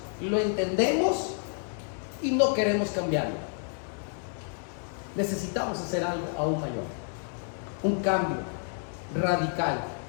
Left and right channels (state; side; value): silent; right; 57 dB below the other